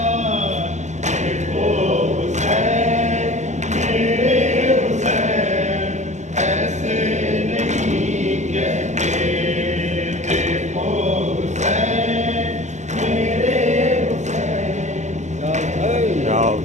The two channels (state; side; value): late; left; 0.34 ms